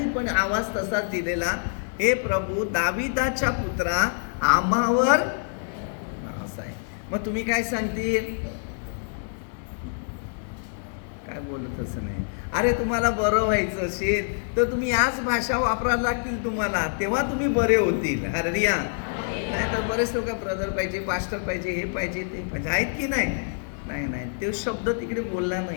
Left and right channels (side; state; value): right; silent; digital silence